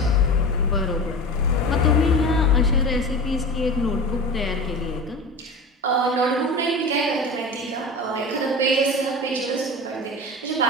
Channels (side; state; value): both; normal; correlation 0.31